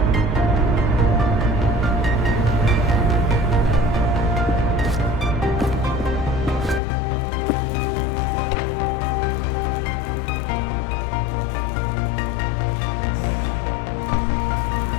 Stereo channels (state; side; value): drops out; right; at 6.8 s